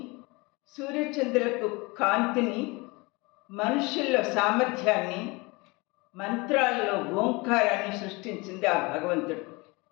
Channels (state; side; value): quieter; right; 25.6 dB